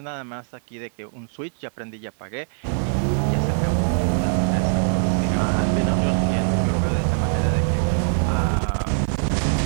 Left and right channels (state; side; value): silent; left; digital silence